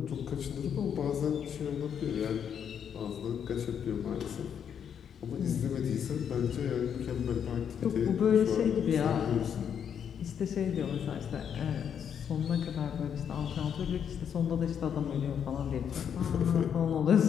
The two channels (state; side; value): quieter; right; 8.1 dB